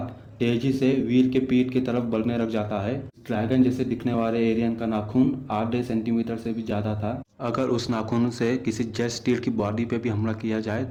तेजी से वीर के पीठ की तरफ बढ़ने लग जाता है। ड्रैगन जैसे दिखने वाले एलियन का नाखून आधे सेंटीमीटर से भी ज्यादा था। अगर उस नाखून से किसी जेट स्टील की बॉडी पे भी हमला किया जाए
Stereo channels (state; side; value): identical; both; correlation 1.00